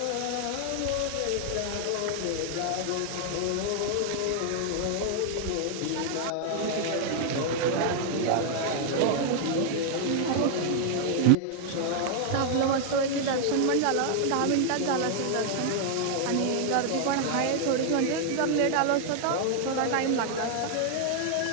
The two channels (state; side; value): different; both; correlation -0.01